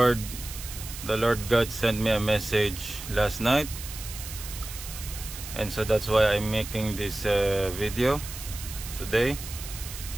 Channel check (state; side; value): noise; right; hiss, 11 dB below the sound